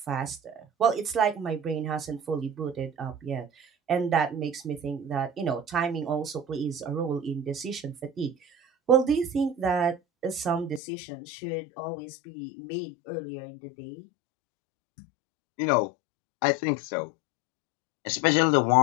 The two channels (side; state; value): right; drops out; at 10.8 s